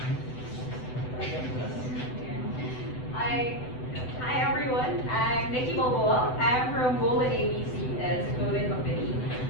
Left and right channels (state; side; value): late; right; 7.9 ms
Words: Hi everyone. I'm Nikki Balboa. I'm from Golden ABC as a clothing company.